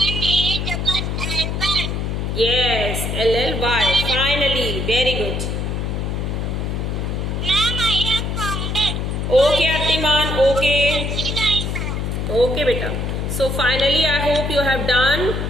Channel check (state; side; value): noise; left; hum, 2 dB below the sound